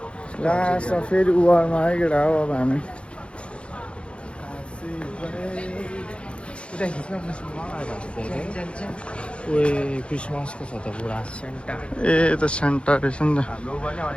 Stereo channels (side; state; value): right; late; 0.058 ms